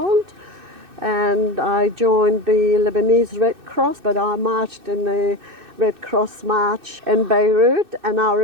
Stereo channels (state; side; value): late; left; 2.6 ms